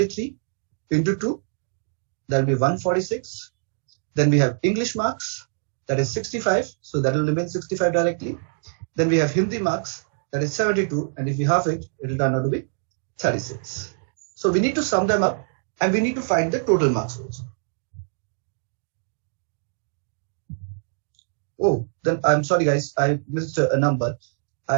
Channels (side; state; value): left; silent; digital silence